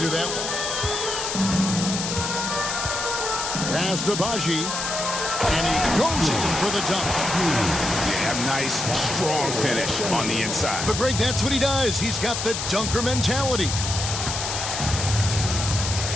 that one. Pass to Baji, and he goes in for the dunk. Yeah, nice, strong finish on the inside. But Greg, that's what he does. He's got the dunker mentality.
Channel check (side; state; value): left; noise; hiss, 3 dB below the sound